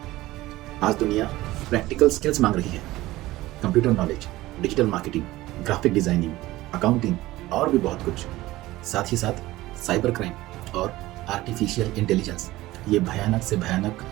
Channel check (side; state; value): left; quieter; 17.5 dB